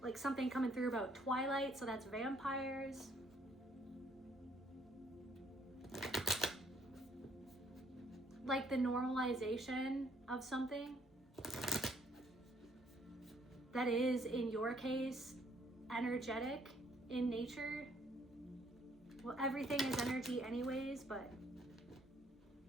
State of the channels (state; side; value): normal; both; correlation 0.66